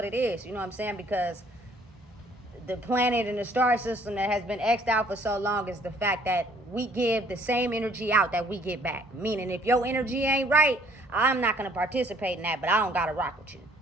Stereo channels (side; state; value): both; normal; correlation 0.60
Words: it is. You know what I'm saying? Because the planet and the star system that has been X'd out for so long is the fact that we give the same energy out that we get back. Meaning if your energy ain't right, I'm not going to participate in that, but I don't got to rock with you.